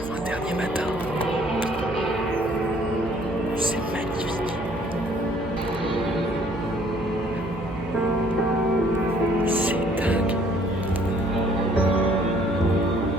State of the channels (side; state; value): right; noise; hum, 11 dB below the sound